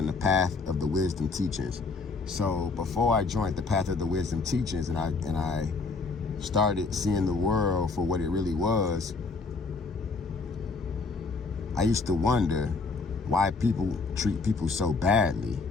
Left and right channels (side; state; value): right; quieter; 4.1 dB